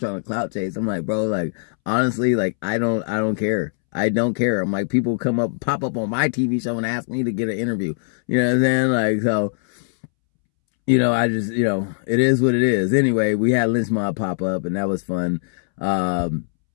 to clout chase. I'm like, bro, like, honestly, like, I don't care. I don't care. I'm like, people pop up on my TV show and ask me to get an interview. You know what I'm saying? Like, so, you know, I just, you know, it is what it is. Anyway, we had Lynch Mob pop up and that was fun.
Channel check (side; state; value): right; silent; 65 dB below the other